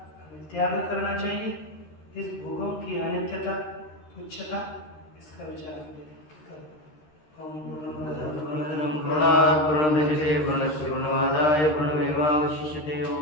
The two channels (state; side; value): late; right; 13 ms